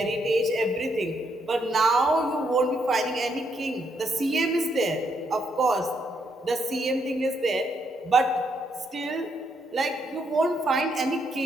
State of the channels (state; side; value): normal; both; correlation 0.76